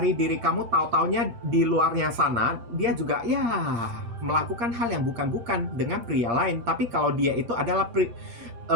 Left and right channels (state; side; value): late; left; 7.7 ms